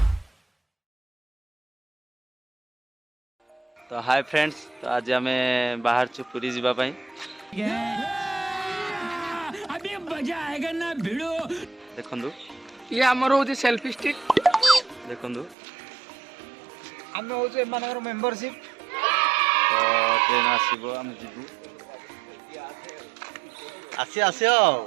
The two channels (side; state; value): left; drops out; at 15.6 s